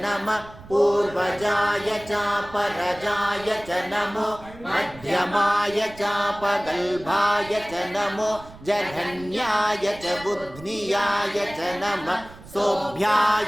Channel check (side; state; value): right; noise; rumble, 19 dB below the sound